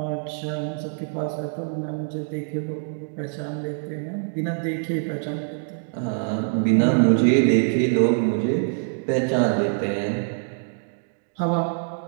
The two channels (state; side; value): silent; left; digital silence